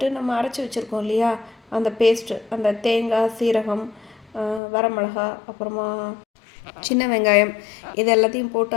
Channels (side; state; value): right; drops out; at 4.6 s